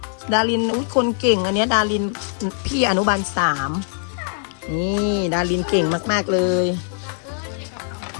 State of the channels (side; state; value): right; silent; 59 dB below the other